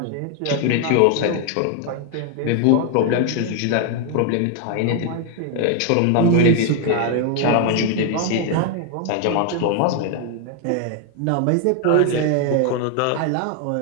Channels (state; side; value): different; both; correlation 0.01